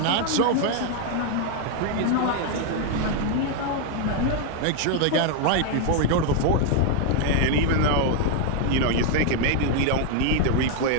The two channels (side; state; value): both; different; correlation 0.00